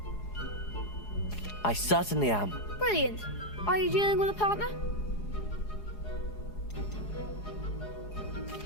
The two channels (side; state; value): right; late; 4.8 ms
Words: I certainly am. Brilliant. Are you dealing with a partner?